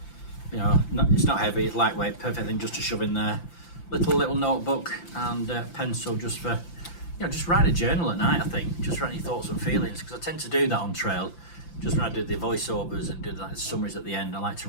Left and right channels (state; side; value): late; right; 5.9 ms